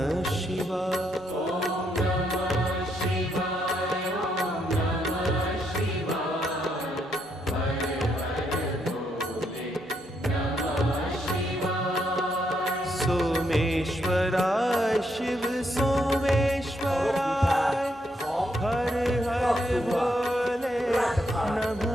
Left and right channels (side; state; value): both; normal; correlation 0.77